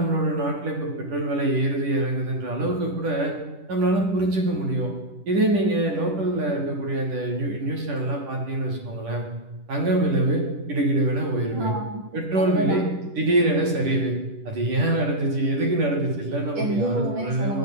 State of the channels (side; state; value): left; late; 10 ms